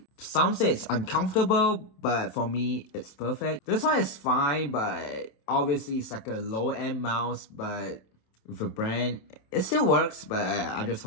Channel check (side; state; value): right; late; 27 ms